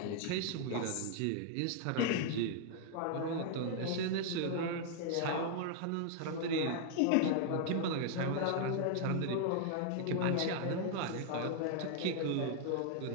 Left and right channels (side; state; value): both; different; correlation 0.00